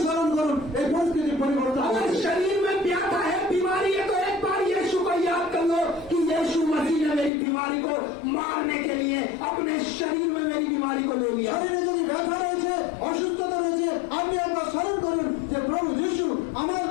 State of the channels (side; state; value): right; drops out; at 7.3 s